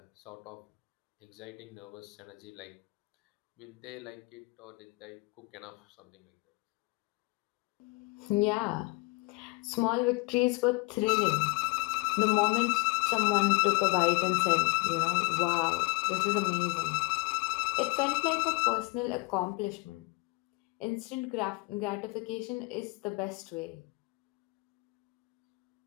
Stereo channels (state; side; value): quieter; right; 26.1 dB